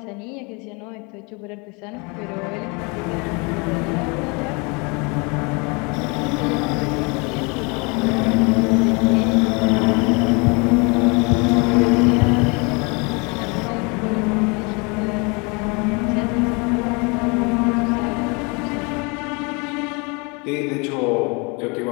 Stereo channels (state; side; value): quieter; right; 30.3 dB